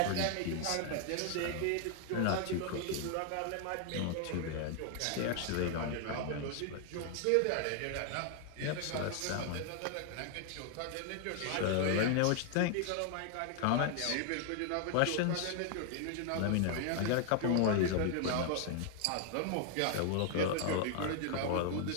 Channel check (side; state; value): both; different; correlation 0.00